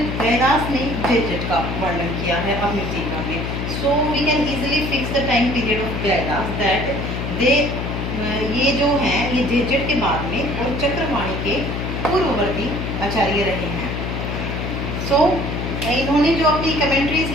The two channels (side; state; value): left; noise; hum, 3 dB below the sound